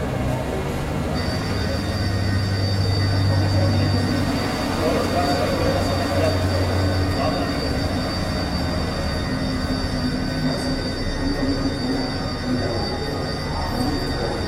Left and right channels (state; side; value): identical; both; correlation 1.00